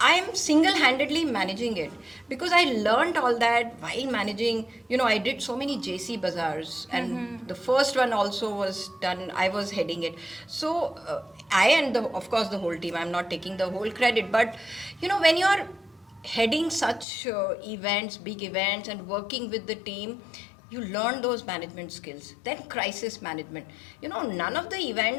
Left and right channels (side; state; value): right; drops out; at 17.1 s